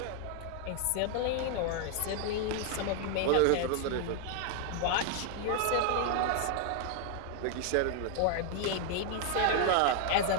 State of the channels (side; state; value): both; different; correlation 0.00